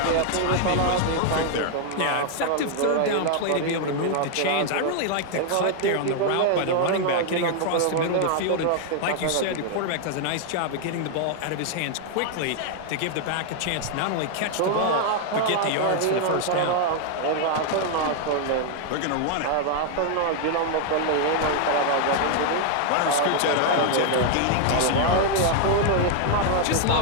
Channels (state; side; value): different; both; correlation 0.00